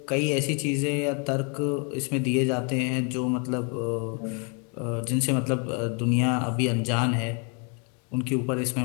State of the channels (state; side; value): quieter; right; 36.9 dB